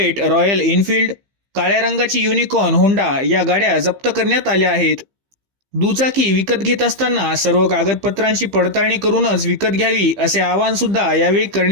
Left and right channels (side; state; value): left; late; 15 ms